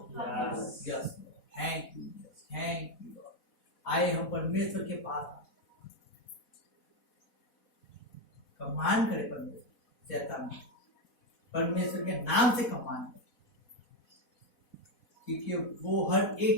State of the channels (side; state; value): right; late; 4.1 ms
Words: Yes. Yes, thank you, thank you. आए हम परमेश्वर के पास, कमान करे परमेश्वर शैतान, परमेश्वर के नाम से कमान करे, क्योंकि वो हर